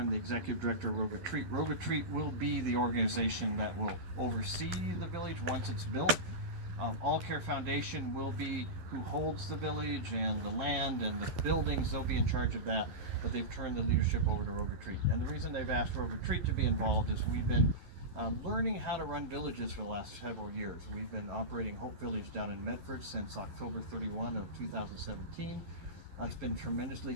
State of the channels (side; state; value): left; late; 11 ms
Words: the Executive Director of Rogue Retreat. Rogue Retreat will be the organization that will oversee the village once it's built. All Care Foundation will be who holds the village and the land and the buildings. They'll be in charge of that, but they've turned the leadership over to Rogue Retreat. And the reason they've asked Rogue Retreat to be involved is we've been learning how to run villages for the last several years. We've been operating Hope Village down in Medford since October 31 of 2017. It's been